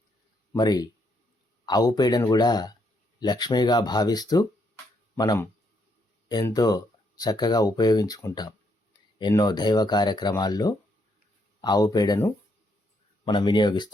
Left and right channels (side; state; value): both; normal; correlation 0.75